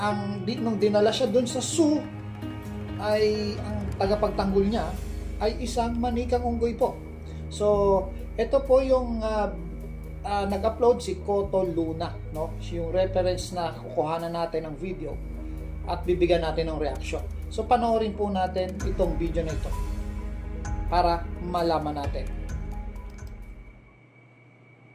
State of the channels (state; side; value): identical; both; correlation 1.00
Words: nung dinala siya doon sa zoo, ay ang tagapagtanggol niya ay isang manikang unggoy po. So, ito po yung nag-upload si Koto Luna, no? Yung reference na kukuhanan natin ng video at bibigyan natin ng reaction. So, panoorin po natin itong video na ito para malaman natin.